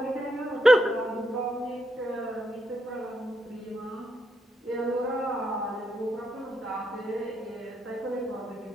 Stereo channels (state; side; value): normal; both; correlation 0.80